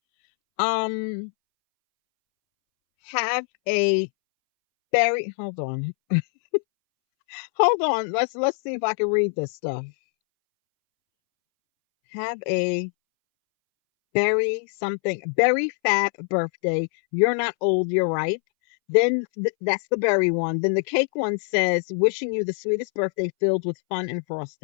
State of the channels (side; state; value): right; silent; 62 dB below the other